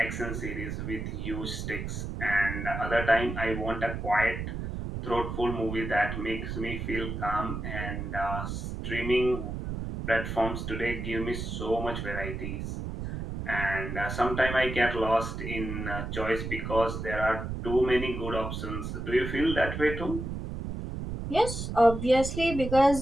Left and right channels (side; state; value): right; noise; rumble, 5 dB below the sound